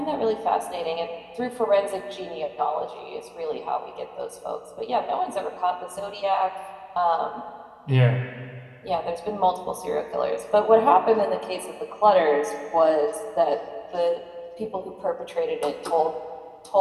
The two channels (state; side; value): identical; both; correlation 1.00